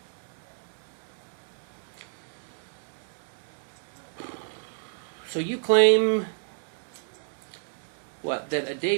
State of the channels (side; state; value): left; silent; digital silence